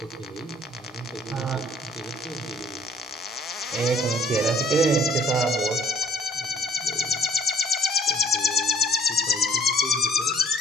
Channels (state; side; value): normal; both; correlation 0.58